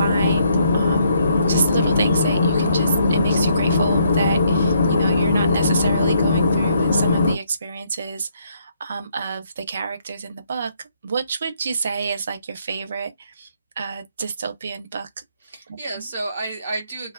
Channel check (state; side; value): inverted; both; correlation -0.71